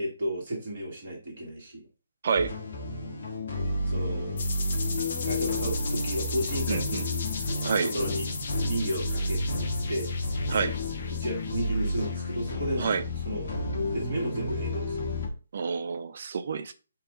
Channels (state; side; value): inverted; both; correlation -0.75